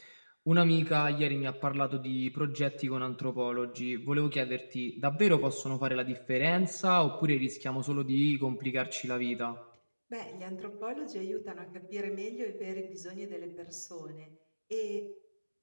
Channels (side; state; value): both; inverted; correlation -1.00